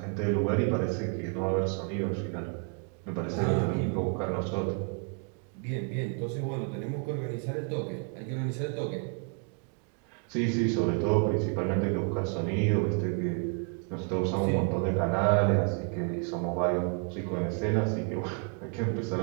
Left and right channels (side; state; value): left; quieter; 38.2 dB